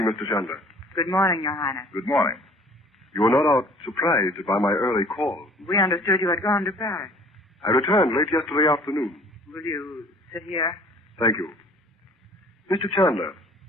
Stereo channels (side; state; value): both; normal; correlation 0.52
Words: Mr. Chandler. Good morning, Your Highness. Good morning. You were not out surprised by my early call. We understood you had gone to Paris. I returned late yesterday afternoon. Will you sit here? Thank you. Mr. Chandler,